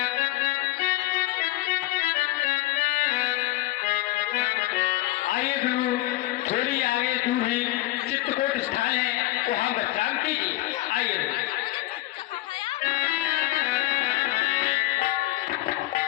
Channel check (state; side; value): quieter; right; 17.5 dB